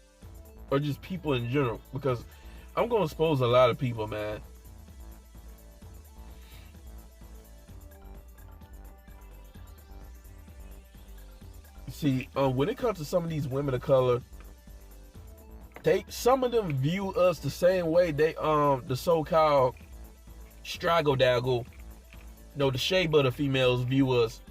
or just people in general. Because I'm gonna expose a lot of people, man. See, when it comes to some of these women of color, some of them view us the same way the so-called straggle daggle, the shea butter females view us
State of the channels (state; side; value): identical; both; correlation 1.00